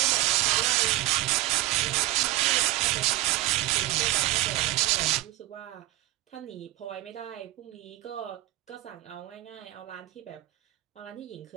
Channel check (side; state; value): left; quieter; 16.4 dB